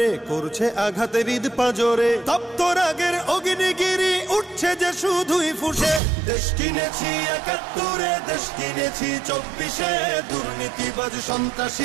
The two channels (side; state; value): left; drops out; at 6.0 s